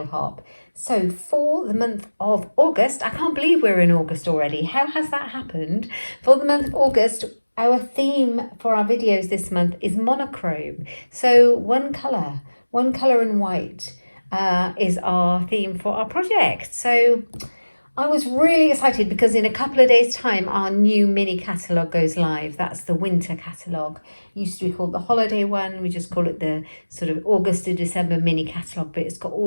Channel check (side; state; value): both; inverted; correlation -1.00